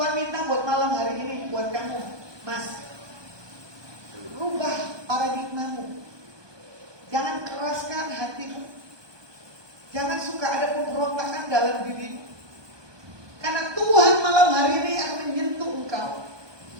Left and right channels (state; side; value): late; left; 1.2 ms